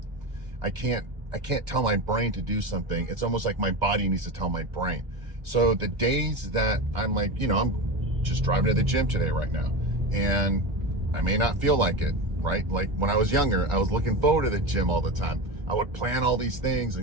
I can't tell my brain to do something. It's almost like my body needs to tell my brain. So the days that I'm like, I'm just driving to the gym today right now, and I may not feel like it, right? Like when I was younger, I was looking forward to the gym all the time. I would plan all these things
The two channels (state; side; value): late; left; 1.4 ms